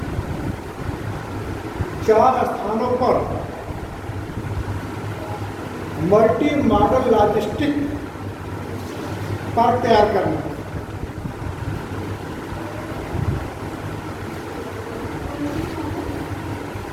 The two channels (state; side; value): identical; both; correlation 1.00